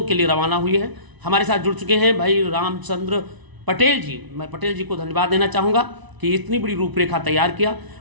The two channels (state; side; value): late; left; 1.0 ms